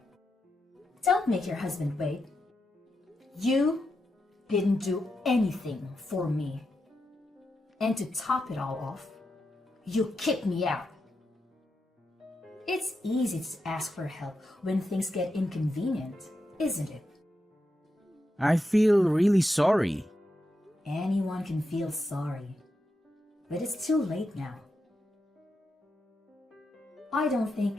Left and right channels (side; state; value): both; normal; correlation 0.87